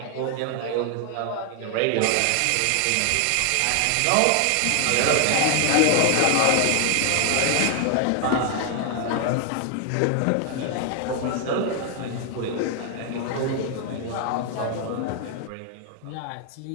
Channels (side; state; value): both; different; correlation 0.00